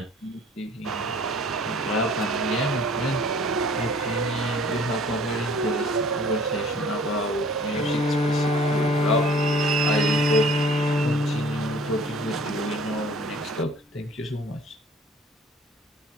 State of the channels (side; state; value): both; normal; correlation 0.52